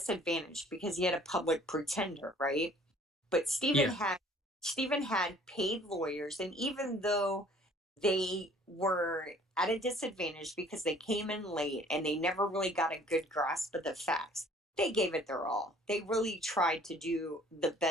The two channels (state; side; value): normal; both; correlation 0.55